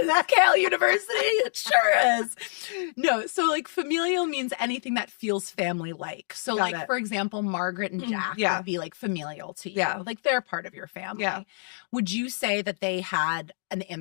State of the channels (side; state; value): right; silent; digital silence